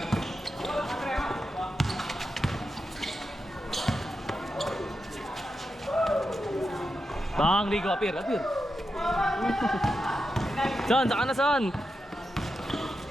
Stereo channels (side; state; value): both; normal; correlation 0.88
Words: Bang, Rico, apir. Son, saka na son.